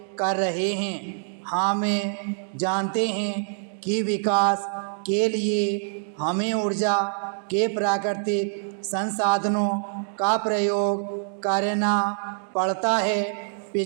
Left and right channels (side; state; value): left; silent; digital silence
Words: कर रहे हैं। हम जानते हैं कि विकास के लिए हमें ऊर्जा के प्राकृतिक संसाधनों का प्रयोग करना पड़ता है।